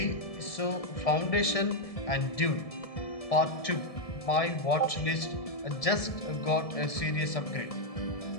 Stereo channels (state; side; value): late; right; 1.7 ms